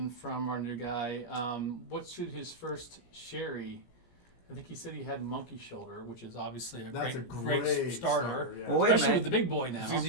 from our new guy. What should his first sherry? I think he said he had monkey shoulder, which is obviously That's a great great starter. yeah. Well, wait a Especially minute. with the big boy now.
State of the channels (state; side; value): late; right; 17 ms